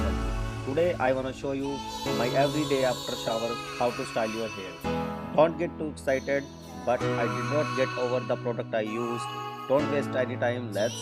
Today I wanna show you my everyday after shower how to style your hair. Don't get too excited, but I did not get over the product I used. Don't waste any time. Let's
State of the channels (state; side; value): identical; both; correlation 1.00